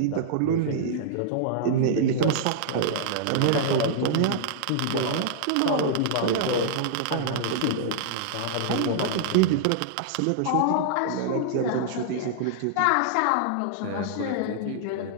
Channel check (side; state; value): both; different; correlation -0.02